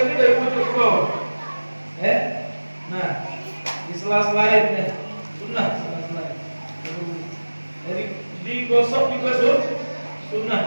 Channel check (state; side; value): inverted; both; correlation -1.00